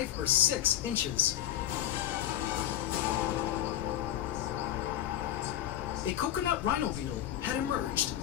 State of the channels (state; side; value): quieter; right; 11.9 dB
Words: or 6 inches. A coconut rhino beetle had emerged